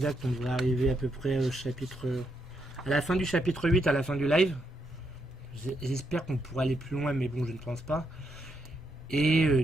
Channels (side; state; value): both; normal; correlation 0.79